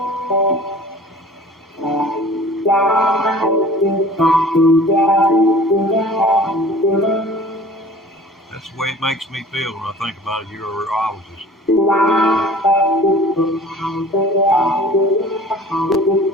That's the way it makes me feel when I think about a urologist.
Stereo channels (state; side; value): normal; both; correlation 0.45